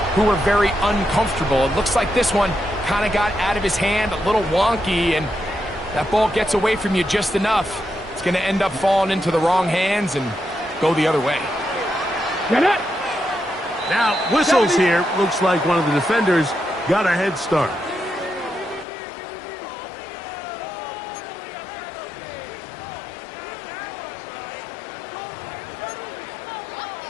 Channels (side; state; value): right; drops out; at 18.9 s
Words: who were very uncomfortable. It looks like this one kind of got out of his hand, a little wonky, and that ball gets away from you just enough. It's going to end up falling into the wrong hands and go the other way. Get it! Now, whistles here. Looks like one of the defenders got a head start.